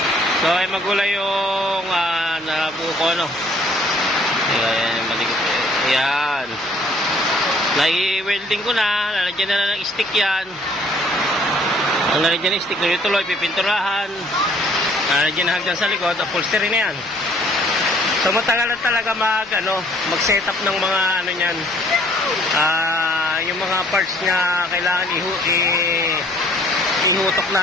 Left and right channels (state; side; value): noise; left; hum, 30 dB below the sound